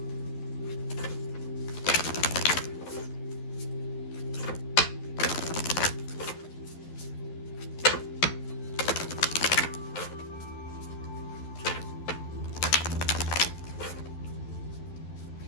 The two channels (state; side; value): late; right; 12 ms